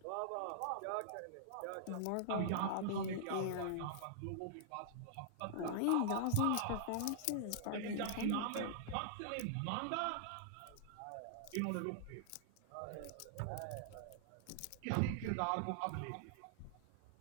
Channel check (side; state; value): both; different; correlation -0.01